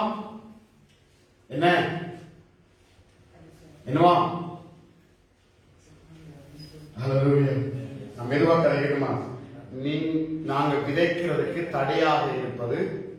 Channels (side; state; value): both; identical; correlation 1.00